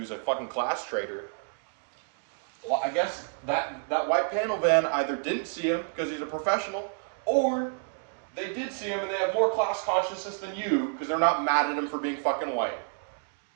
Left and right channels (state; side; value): silent; left; 58 dB below the other